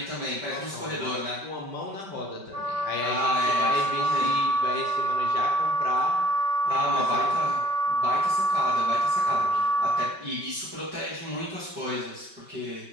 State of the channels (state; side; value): late; left; 5.2 ms